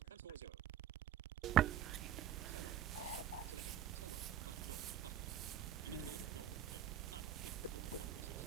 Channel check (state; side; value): quieter; left; 10.3 dB